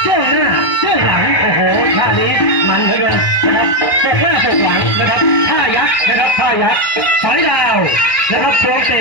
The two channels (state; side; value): late; right; 1.3 ms